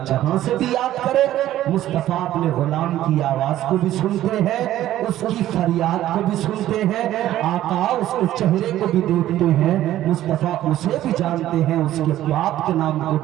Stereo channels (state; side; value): quieter; left; 13.4 dB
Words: جہاں سے بھی یاد کرے، مصطفیٰ اپنے غلام کی آواز کو بھی سنتے ہیں، اس کی فریاد کو بھی سنتے ہیں، آقا اس کے چہرے کو بھی دیکھتے ہیں، مصطفیٰ اسے بھی جانتے ہیں، اس کے باپ کے نام کو